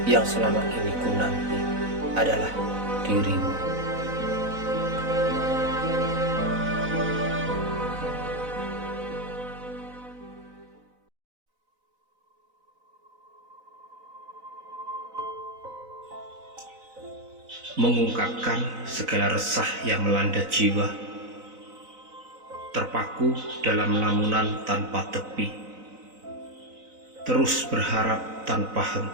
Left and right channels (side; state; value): left; late; 4.0 ms